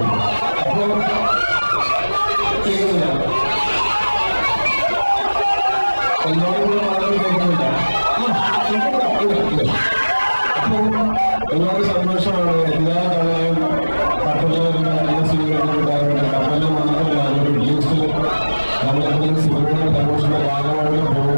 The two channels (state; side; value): inverted; both; correlation -1.00